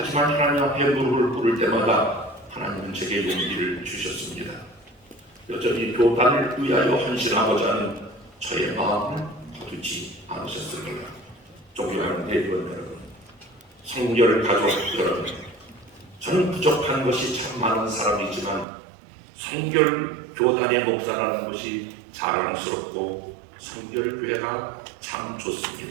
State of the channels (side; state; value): left; drops out; at 18.7 s